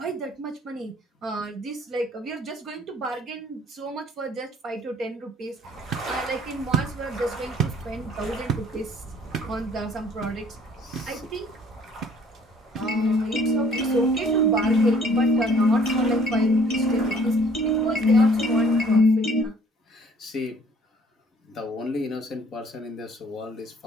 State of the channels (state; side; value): normal; both; correlation 0.57